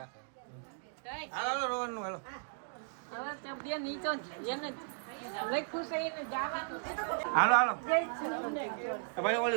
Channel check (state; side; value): silent; left; digital silence